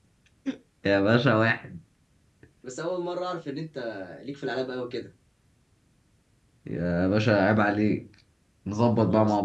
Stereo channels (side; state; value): both; identical; correlation 1.00